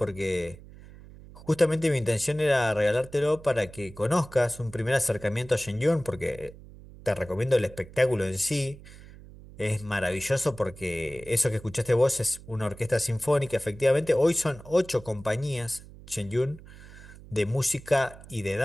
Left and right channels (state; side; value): noise; right; hum, 18 dB below the sound